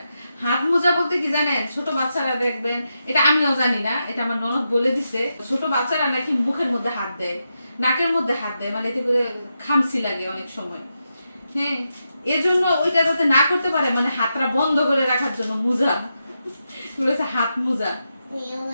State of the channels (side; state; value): both; inverted; correlation -0.86